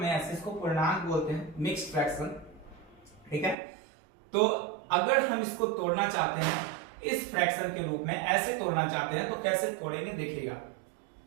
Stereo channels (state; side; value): drops out; left; at 3.6 s